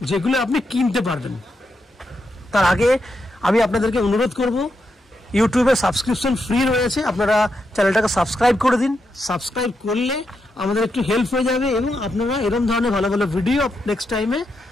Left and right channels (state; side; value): normal; both; correlation 0.84